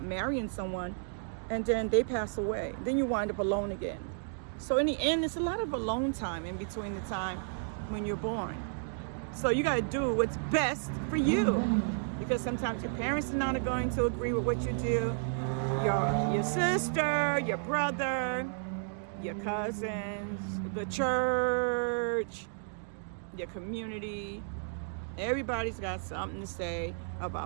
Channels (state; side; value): silent; left; digital silence